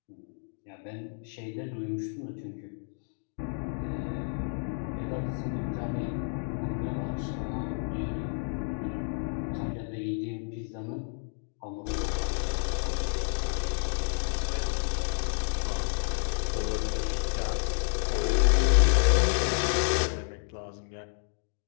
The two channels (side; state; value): right; silent; digital silence